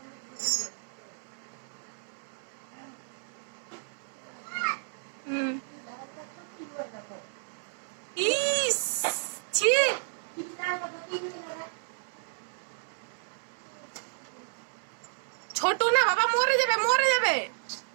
ইস, ছি। ছোট না বাবা, মরে যাবে, মরে যাবে।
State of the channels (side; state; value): left; silent; 57 dB below the other